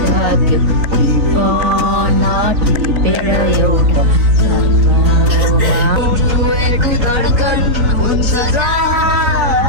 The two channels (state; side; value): late; left; 3.9 ms